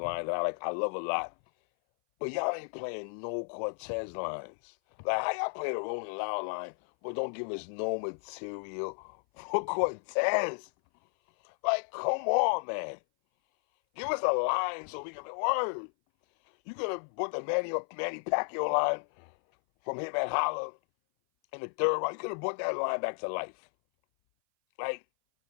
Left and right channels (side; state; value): right; silent; 56 dB below the other